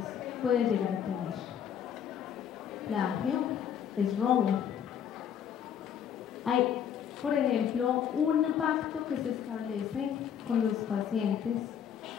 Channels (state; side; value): quieter; right; 8.7 dB